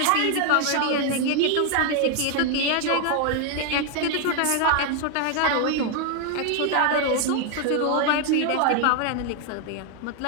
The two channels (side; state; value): both; different; correlation 0.01